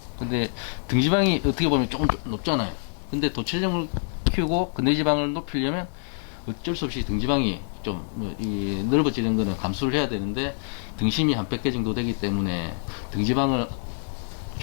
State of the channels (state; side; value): silent; right; digital silence